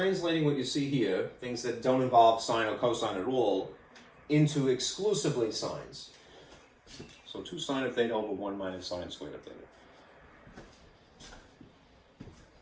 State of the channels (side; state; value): both; identical; correlation 1.00